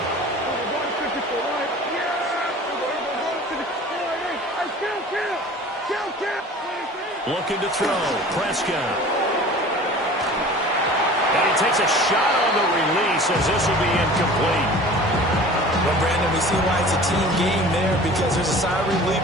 Looking to throw, Prescott. And he takes a shot on the release as this will be incomplete. Well, Brandon, we see why it's a team game there, because there's a sigh of relief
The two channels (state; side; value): normal; both; correlation 0.42